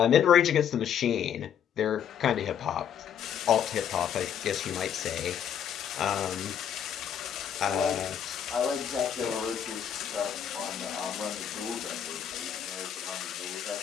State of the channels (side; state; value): right; quieter; 8.8 dB